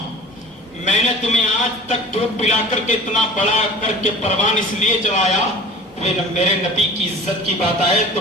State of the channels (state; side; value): normal; both; correlation 0.41